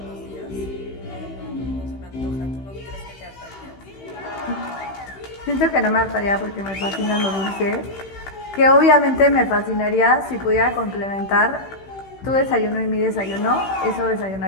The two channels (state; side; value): late; right; 15 ms